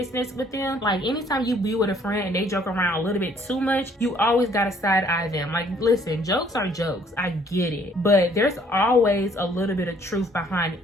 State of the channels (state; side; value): normal; both; correlation 0.61